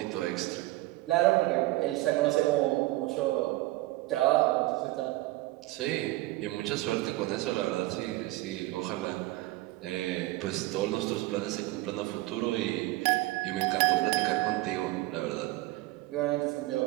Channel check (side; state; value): left; quieter; 18.9 dB